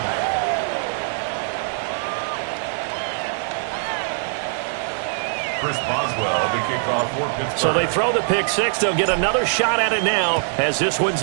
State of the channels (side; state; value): left; silent; 64 dB below the other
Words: Chris Boswell, the kickoff for Pittsburgh. So they throw the pick six. They'll get another shot at it now as this one's